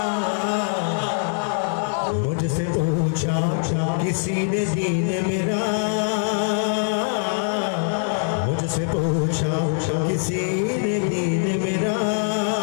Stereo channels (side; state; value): right; silent; 64 dB below the other